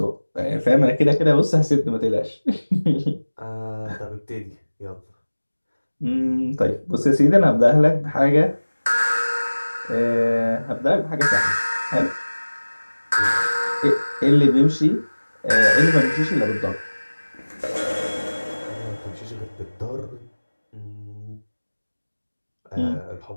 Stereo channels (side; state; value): both; inverted; correlation -1.00